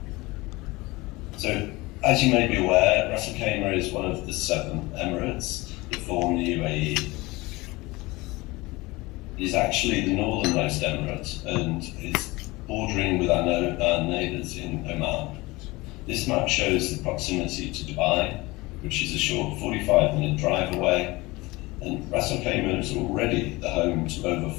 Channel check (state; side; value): quieter; right; 22.0 dB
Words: So, as you may be aware, Ras Al Khaimah is one of the 7 emirates that form the UAE. It is actually the northernmost emirate and is bordering with our neighbours in Oman. This map shows the proximity to Dubai, which is a short 45-minute drive away, and Ras Al Khaimah is already the home to over